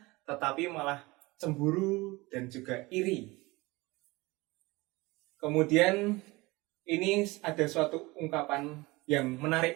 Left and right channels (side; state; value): left; quieter; 22.4 dB